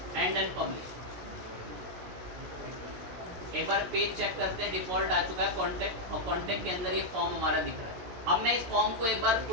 एंड देन पब्लिश। एक बार पेज चेक करते हैं, डिफॉल्ट आ चुका है कॉन्टेक्ट, और कॉन्टेक्ट के अंदर ये फॉर्म हमारा दिख रहा है। अब मैं इस फॉर्म को एक बार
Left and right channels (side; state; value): left; late; 17 ms